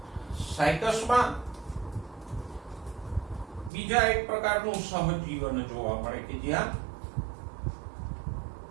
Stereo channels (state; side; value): drops out; left; at 3.7 s